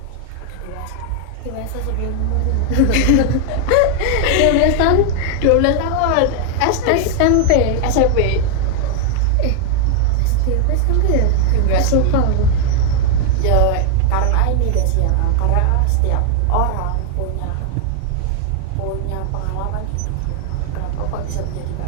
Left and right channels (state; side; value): different; both; correlation 0.00